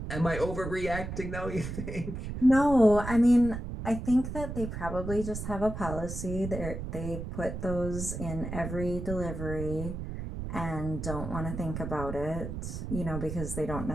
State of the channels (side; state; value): right; noise; rumble, 6 dB below the sound